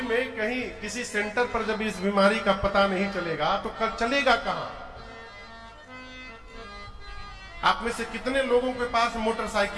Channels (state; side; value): identical; both; correlation 1.00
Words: में कहीं किसी सेंटर पर जब इस बीमारी का पता नहीं चलेगा तो कल चलेगा कहां? आप में से कितने लोगों के पास